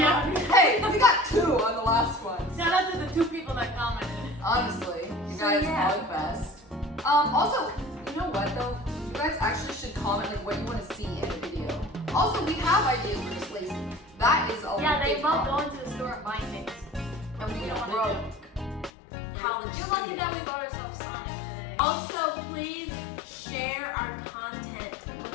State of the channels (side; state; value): right; drops out; at 18.9 s